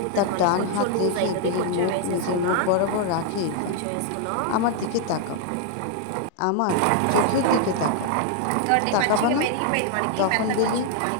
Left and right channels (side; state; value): both; different; correlation 0.00